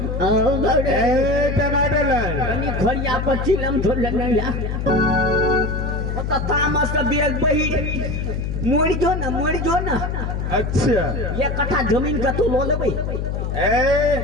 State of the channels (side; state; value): left; noise; hum, 2 dB below the sound